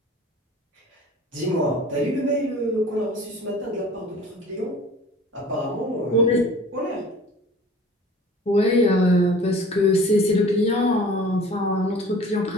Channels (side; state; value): both; normal; correlation 0.45